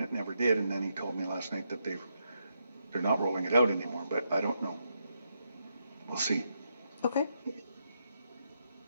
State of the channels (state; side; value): inverted; both; correlation -0.81